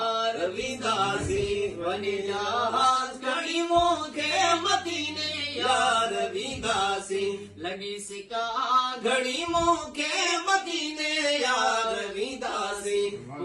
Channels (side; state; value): both; identical; correlation 1.00